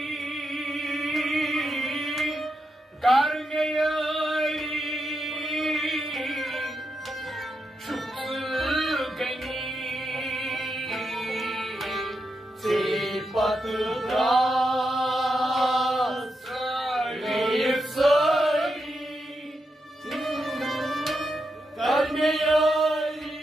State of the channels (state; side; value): normal; both; correlation 0.85